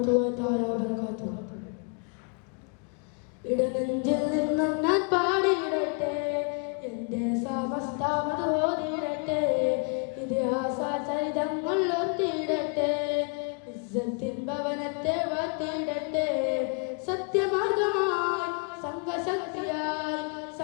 തആല വബറകാതുഹു. ഇടനെഞ്ചിൽ നിന്നും ഞാൻ പാടിയിടട്ടെ, എന്റെ സമസ്ത മതോദിടട്ടെ, ഇതിഹാസ ചരിതങ്ങൾ ഓർത്തിടട്ടെ, ഇസ്സത്തിൻ ഭവനത്തെ വാഴ്ത്തിടട്ടെ. സത്യമാർഗമായി സംഘശക്തിയായി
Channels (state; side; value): quieter; right; 35.5 dB